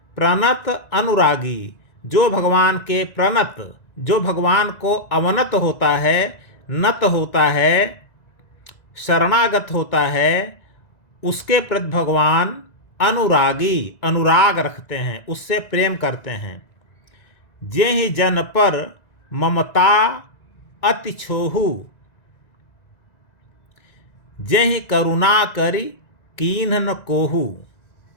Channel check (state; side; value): late; right; 1.9 ms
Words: प्रणत अनुरागी, जो भगवान के प्रणत, जो भगवान को अवनत होता है, नत होता है, शरणागत होता है, उसके प्रति भगवान अनुरागी, अनुराग रखते हैं, उससे प्रेम करते हैं। जेहि जन पर ममता अति छोहू, जेहि करुणा करी कीन्ह न कोहू।